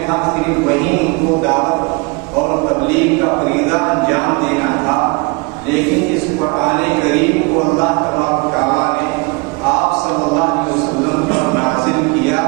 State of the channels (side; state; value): left; quieter; 28.8 dB